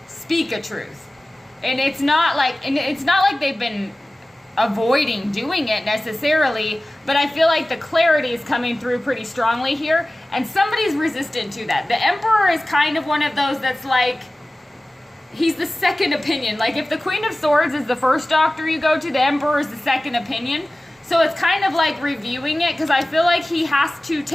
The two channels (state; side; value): normal; both; correlation 0.97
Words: speak a truth. And it's not like they've been avoiding doing it necessarily, but I feel like the clarity is coming through pretty strongly here, and somebody's resistant to that. The Emperor is kind of one of those that's like, he's the second opinion. Like if the Queen of Swords is the first doctor you go to, the Emperor is the second opinion. So it's kind of like reviewing it, because I feel like he has to